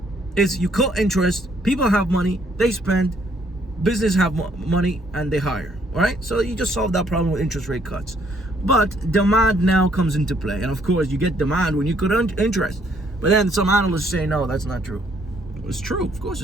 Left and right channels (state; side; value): normal; both; correlation 0.67